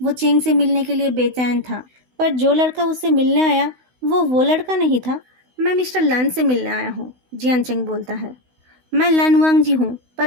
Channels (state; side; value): late; left; 16 ms